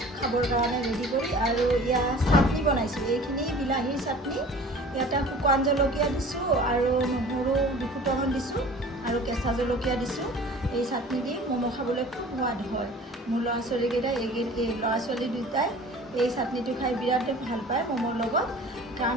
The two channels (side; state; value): both; normal; correlation 0.44